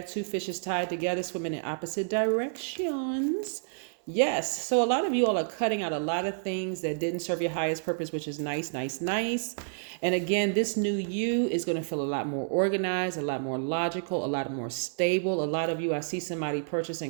two fishes tied together, swimming in opposite directions. Yes. So a lot of you all are cutting out a lot of things that didn't serve your highest purpose, which is nice. And again, this new you is going to feel a lot more organized, a lot more logical, a lot more stable. A lot of you, I see somebody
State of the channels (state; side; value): silent; left; 58 dB below the other